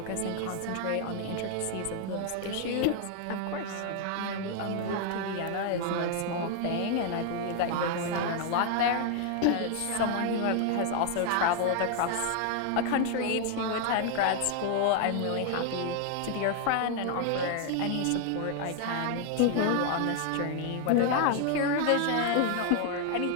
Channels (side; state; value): both; different; correlation 0.00